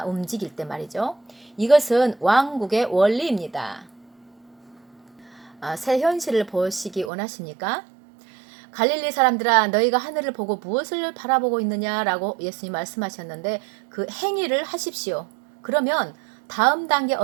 움직일 때 말이죠. 이것은 왕국의 원리입니다. 새 현실을 보시기 원하십니까? 갈릴리 사람들아 너희가 하늘을 보고 무엇을 바라보고 있느냐라고 예수님 말씀하셨는데 그 행위를 하십시오. 그러면 다음 단계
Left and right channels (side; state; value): left; drops out; at 7.1 s